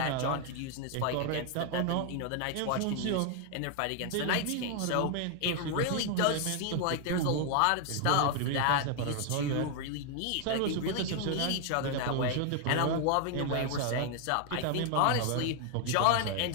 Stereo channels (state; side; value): different; both; correlation 0.00